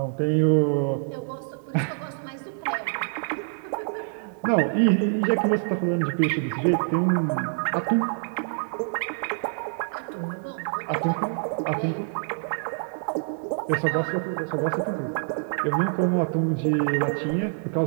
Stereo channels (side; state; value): left; silent; digital silence